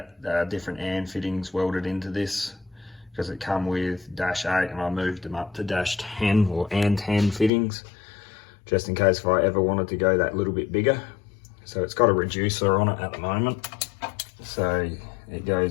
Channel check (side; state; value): right; drops out; at 7.5 s